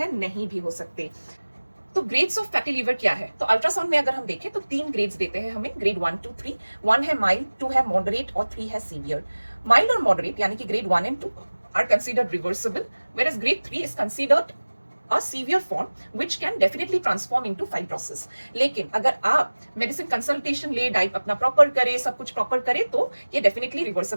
नहीं भी हो सकते। तो ग्रेड्स ऑफ फैटी लीवर क्या है? तो अल्ट्रासाउंड में अगर हम देखें तो 3 ग्रेड्स देते हैं हमें, ग्रेड 1 2 3। 1 है माइल्ड, 2 है मॉडरेट और 3 है सीवियर। माइल्ड और मॉडरेट यानी कि grade 1 and 2 are considered reversible, whereas grade 3 is considered a severe form which can definitely transform into fibrosis। लेकिन अगर आप मेडिसिन कंसल्टेशन ले, डाइट अपना प्रॉपर करे, सब कुछ प्रॉपर करे, तो ये डेफिनेटली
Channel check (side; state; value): both; inverted; correlation -1.00